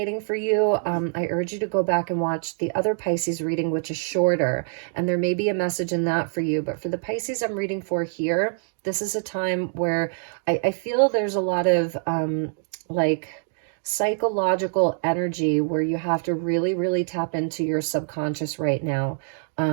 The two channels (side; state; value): left; silent; digital silence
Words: for you, I urge you to go back and watch the other Pisces reading, which is shorter, and there may be a message in that for you. But for the Pisces I'm reading for here, this is a time where I feel there's a lot of like psychological energy where you have to really, really tap into your subconscious right now.